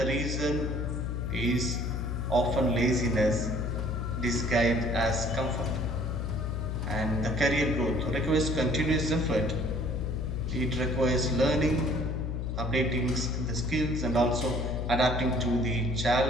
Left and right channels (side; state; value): left; noise; hum, 2 dB below the sound